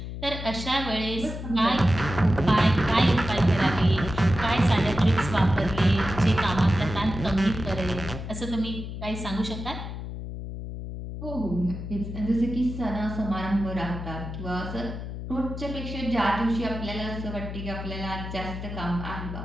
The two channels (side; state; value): left; noise; hum, 8 dB below the sound